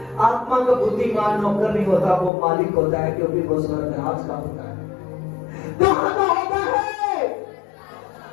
आत्मा का बुद्धिमान नौकर नहीं होता, वो मालिक होता है, क्योंकि वो स्वर्गराज का होता है। कहां का होता है?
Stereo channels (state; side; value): drops out; right; at 2.3 s